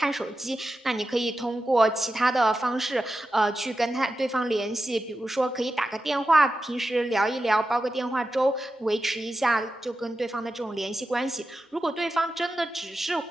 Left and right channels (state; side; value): normal; both; correlation 0.91